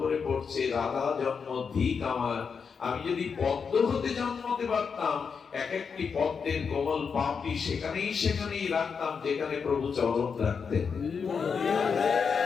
পড়ছে। রাধা জন্ম ধিক আমার, আমি যদি পদ্ম হতে জন্মতে পারতাম, এক একটি পদ্মের কোমল পাপড়ি সেখানেই সেখানেই রাখতাম যেখানে প্রভু চরণ রাখতেন।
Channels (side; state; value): right; quieter; 6.0 dB